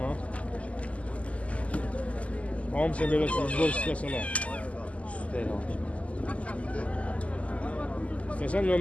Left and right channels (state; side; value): late; right; 0.066 ms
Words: Hamısı belə sizbol istəsələr. Üstəyə almışım. İstəsən